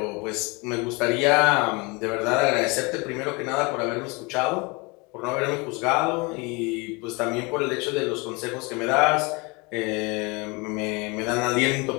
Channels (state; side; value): quieter; right; 27.8 dB